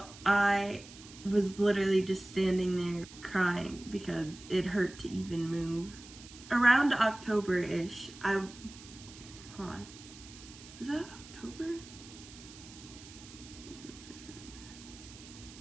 I was literally just standing there crying because it hurt to even move. Around October-ish, hold on, was that October?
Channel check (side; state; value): right; noise; hiss, 18 dB below the sound